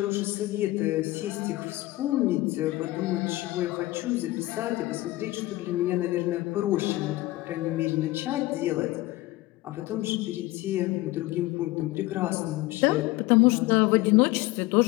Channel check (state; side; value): quieter; right; 18.6 dB